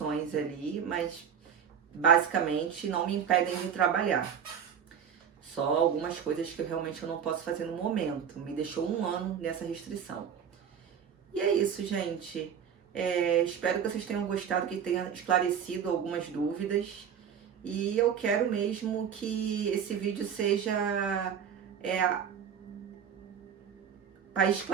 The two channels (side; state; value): left; quieter; 8.0 dB